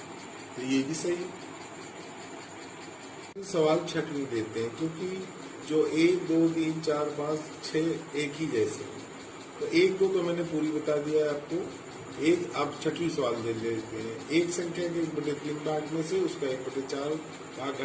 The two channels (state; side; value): identical; both; correlation 1.00